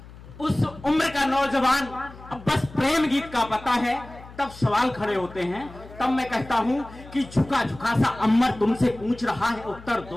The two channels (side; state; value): left; noise; hum, 18 dB below the sound